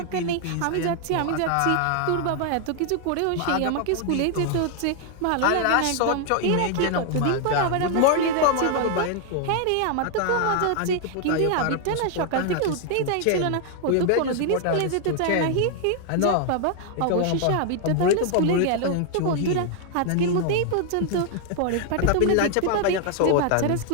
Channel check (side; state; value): both; different; correlation 0.00